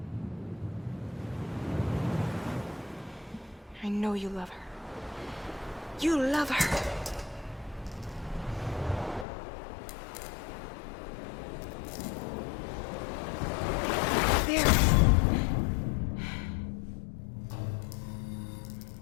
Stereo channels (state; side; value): drops out; right; at 9.2 s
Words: I know you love her. You love her. There.